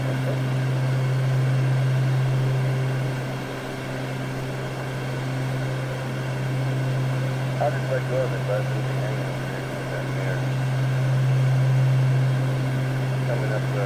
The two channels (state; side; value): identical; both; correlation 1.00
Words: I'll just let go of it, Buzz. It'll be hanging down here. Coming up,